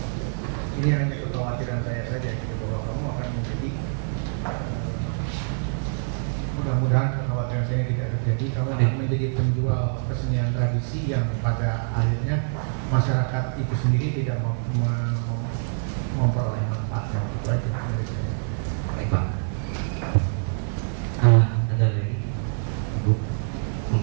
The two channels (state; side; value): silent; left; 56 dB below the other